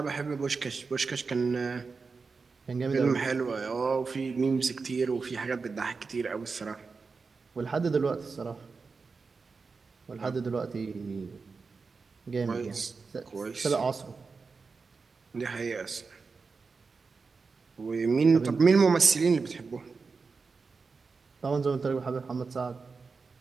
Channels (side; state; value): left; quieter; 4.6 dB